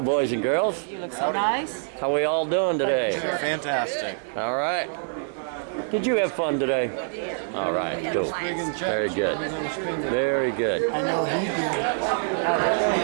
boys and girls. You look so nice. How we all doing today? Fantastic. All right. Did you have fun today? All right, cool. Very good. Very good. I know he did.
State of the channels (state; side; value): silent; left; digital silence